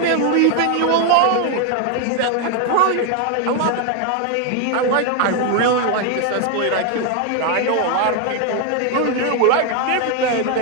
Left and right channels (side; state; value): both; different; correlation 0.01